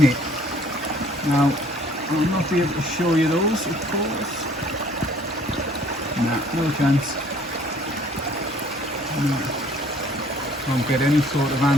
it. Now, I'll not be able to show you those, of course. Nah, no chance. No. Won't get any sort of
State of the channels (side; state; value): both; normal; correlation 0.57